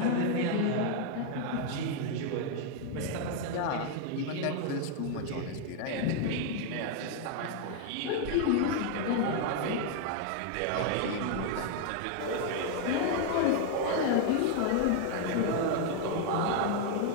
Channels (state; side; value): different; both; correlation 0.00